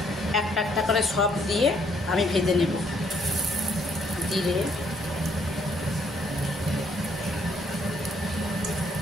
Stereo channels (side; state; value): both; normal; correlation 0.68